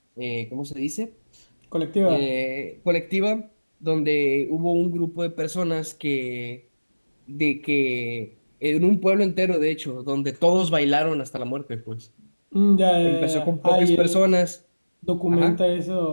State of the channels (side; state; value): both; inverted; correlation -1.00